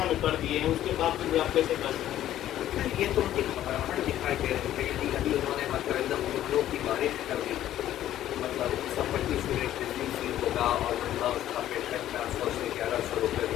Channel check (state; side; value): quieter; right; 12.5 dB